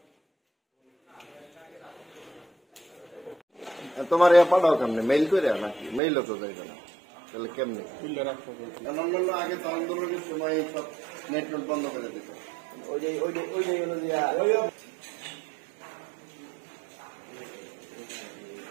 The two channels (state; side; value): drops out; left; at 6.0 s